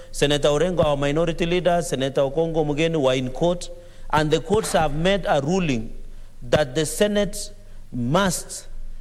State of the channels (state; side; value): identical; both; correlation 1.00